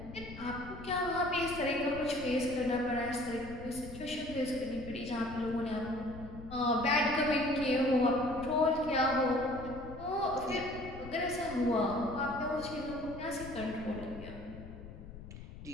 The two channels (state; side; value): noise; left; rumble, 13 dB below the sound